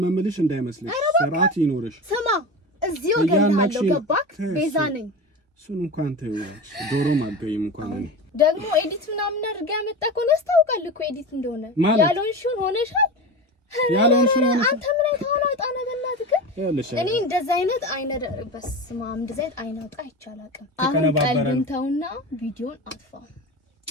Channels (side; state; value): both; normal; correlation 0.27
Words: ምልሽ እንዳይመስልሽ ስርዓት ይኖርሽ። ስማ እዚሁ ገለሃለሁ ገባክ? ቤዛ ነኝ። እሱን እንኳን ተይዋለሽ። ዶሮም አልገይም እንኳን እኔ ደግሞ ኤዲት ምናምን አድርጋ ያመጣከው ነው ታውቃለህ እኮ ኤዲት እንደሆነ ያልሆንሽውን ሆነሻል። ያልሆንሽውን አንተ ምን አይተኸው ነው ጣና በእናትህ እኔ እንደዛ አይነት አይነት በስማም እንደዛ አይነት አይናውጣ አይቻላልም። አሁን ቀልብን ተውና ቪዲዮን አጥፋ።